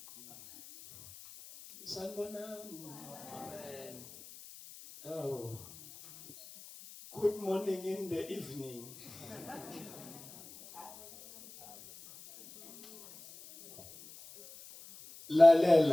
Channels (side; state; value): left; noise; hiss, 18 dB below the sound